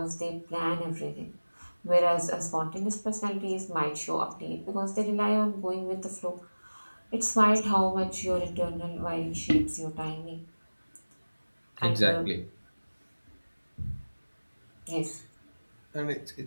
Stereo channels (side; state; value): both; inverted; correlation -1.00